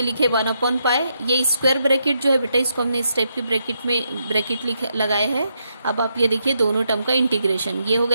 लिखे 1 अपॉन पाई. ये स्क्वायर ब्रैकेट जो है बेटा इसको हमने इस टाइप की ब्रैकेट लगाए हैं. अब आप ये देखिए दोनों टर्म का इंटीग्रेशन ये हो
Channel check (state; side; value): inverted; both; correlation -0.80